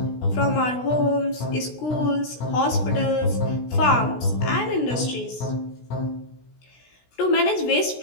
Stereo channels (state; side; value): late; right; 16 ms